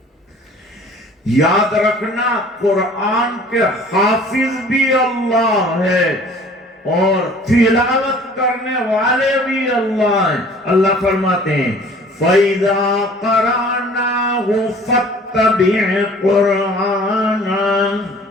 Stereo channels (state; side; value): normal; both; correlation 0.50